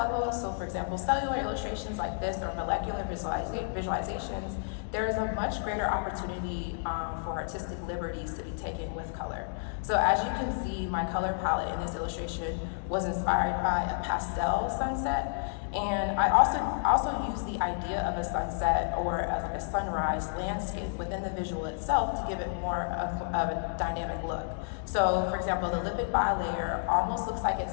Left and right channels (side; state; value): right; silent; digital silence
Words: so for example, cellular illustrations like this or molecular visualizations, there is a much greater opportunity for artistic liberties to be taken with color. So as you can see, my color palette in this illustration was inspired by a pastel sunset. And I also use the idea of a sunset or a sunrise landscape within the visual itself to give it more of a dynamic look. So, for example, the lipid bilayer almost looks like